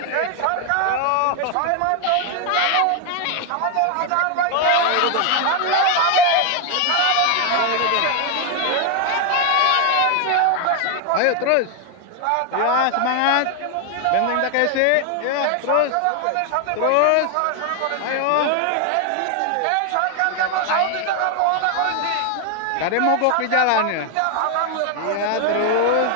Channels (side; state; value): both; different; correlation 0.00